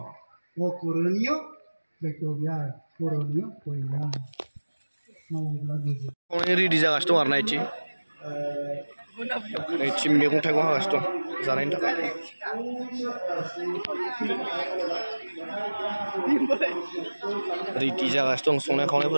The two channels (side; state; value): both; inverted; correlation -1.00